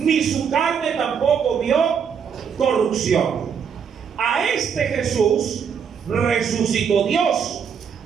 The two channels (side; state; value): left; quieter; 7.0 dB